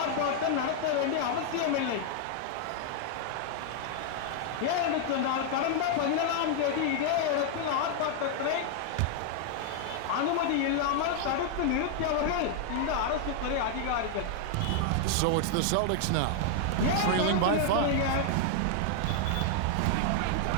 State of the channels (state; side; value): different; both; correlation 0.00